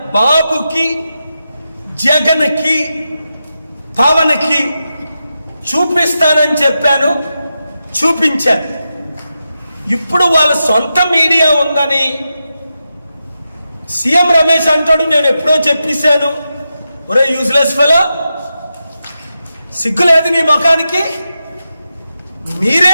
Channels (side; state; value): both; inverted; correlation -0.89